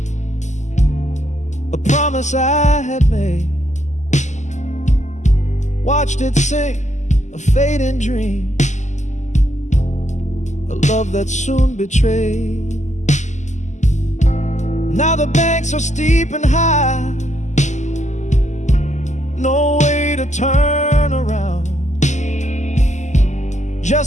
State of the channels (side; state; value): right; late; 0.34 ms